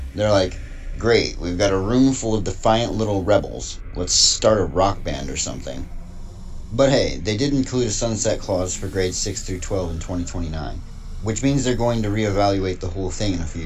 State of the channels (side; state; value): both; identical; correlation 1.00